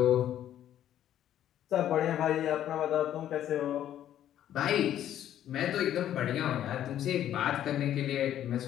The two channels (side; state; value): right; quieter; 11.3 dB